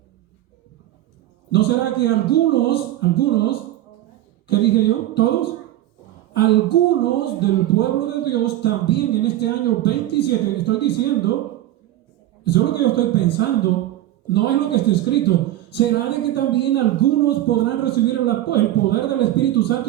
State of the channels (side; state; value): left; quieter; 13.9 dB